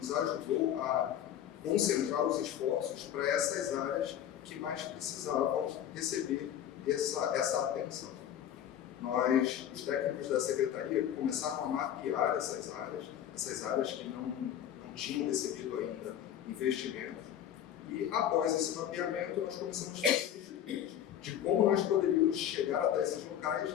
ajudou a concentrar os esforços para essas áreas que mais precisavam receber essa atenção. Nós, os técnicos da Secretaria, começaram a mapear essas áreas que não tinham recebido ainda investimentos, e após esse mapeamento nós começamos a fazer estudos de como nós poderíamos chegar até esses locais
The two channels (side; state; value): right; quieter; 10.4 dB